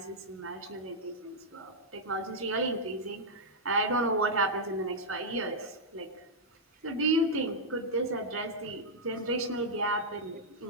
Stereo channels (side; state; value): both; normal; correlation -0.07